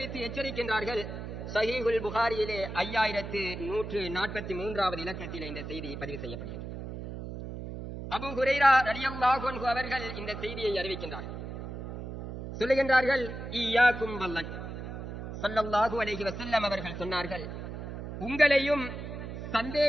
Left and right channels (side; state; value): right; noise; hum, 8 dB below the sound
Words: எச்சரிக்கின்றார்கள். ஸஹீஹுல் புகாரியிலே 5143வது இலக்கத்திலே இந்த செய்தி பதிவு செய்யப்படுகிறது. அபூ ஹுரைரா ரலியல்லாஹு அன்ஹு அவர்கள் இந்த செய்தியை அறிவிக்கின்றார்கள். சொல்லுகின்றார்கள், இய்யாக்கும் வல்லன். ஸல்லல்லாஹு அலைஹி வஸல்லம் அவர்கள் சொன்னார்கள், உங்களையும்